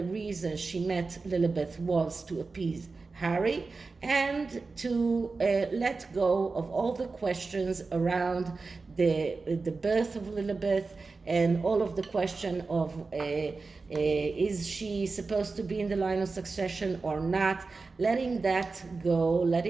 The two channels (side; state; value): left; quieter; 4.1 dB